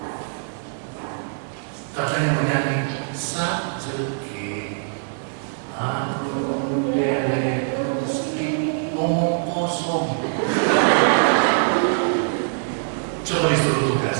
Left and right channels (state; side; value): silent; left; 61 dB below the other